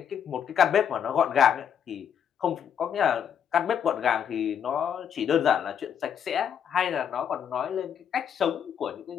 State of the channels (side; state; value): right; quieter; 8.4 dB